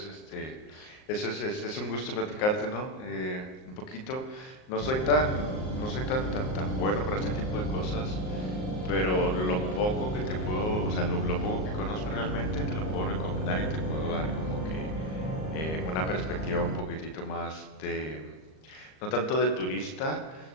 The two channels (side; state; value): right; late; 38 ms